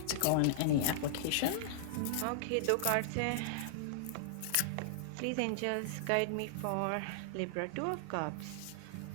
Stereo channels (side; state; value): both; different; correlation -0.01